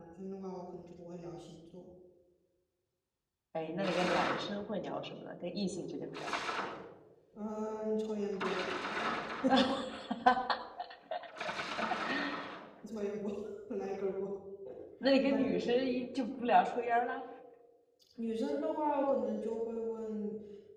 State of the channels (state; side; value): identical; both; correlation 1.00